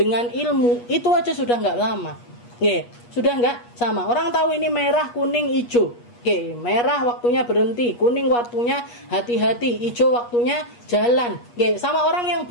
ilmu, itu aja sudah nggak sama. Sudah nggak sama. Orang tahu ini merah, kuning, hijau. Merah waktunya berhenti, kuning waktunya hati-hati, hijau waktunya jalan. Sama orang yang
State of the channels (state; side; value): late; right; 8.4 ms